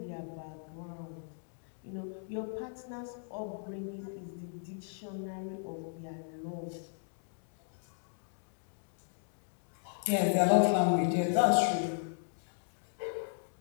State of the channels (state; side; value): silent; right; digital silence